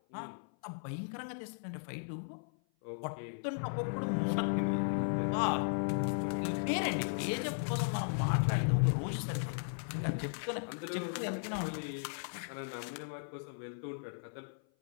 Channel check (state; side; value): silent; right; 54 dB below the other